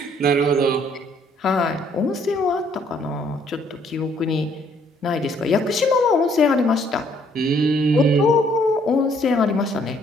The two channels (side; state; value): both; normal; correlation 0.65